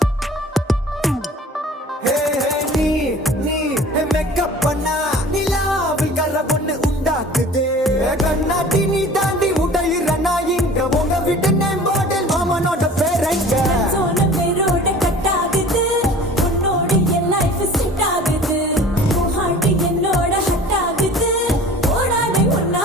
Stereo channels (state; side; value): normal; both; correlation 0.44